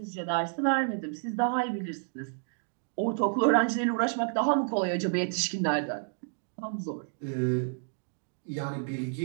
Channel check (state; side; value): silent; left; digital silence